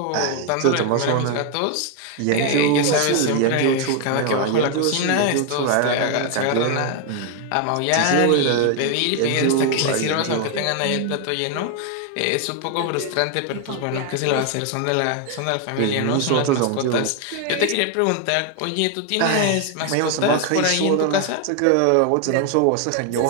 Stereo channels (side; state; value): both; different; correlation 0.01